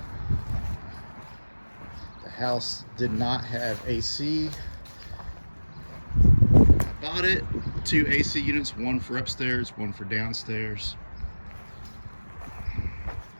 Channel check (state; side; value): inverted; both; correlation -1.00